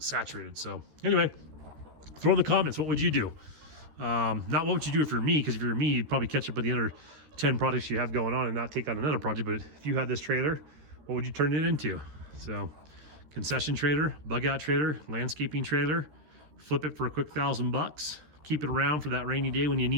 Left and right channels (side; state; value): left; late; 14 ms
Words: So anyway, throw in the comments, what would you do? Not what would you do for me, because if you're me, you'd probably catch up with the other 10 projects you have going on and not take on another project. But if you had this trailer, what would you turn it into? So concession trailer, bug out trailer, landscaping trailer, flip it for a quick $1,000. Keep it around for that rainy day when you